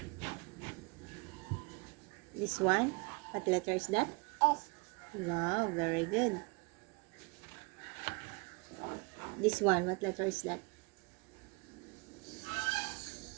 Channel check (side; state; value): left; quieter; 29.7 dB